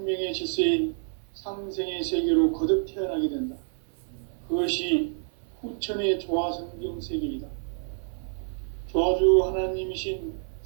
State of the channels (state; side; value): silent; left; 59 dB below the other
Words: 질서인 상생의 세계로 거듭 태어나게 된다. 그것이 후천의 조화성경 세계이다. 조화주 하나님이신